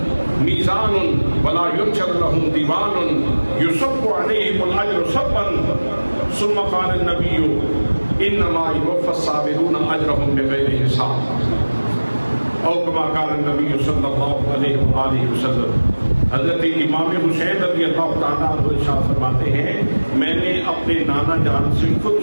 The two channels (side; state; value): both; inverted; correlation -1.00